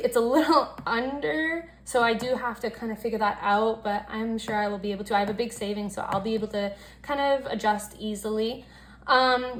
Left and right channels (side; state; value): both; identical; correlation 1.00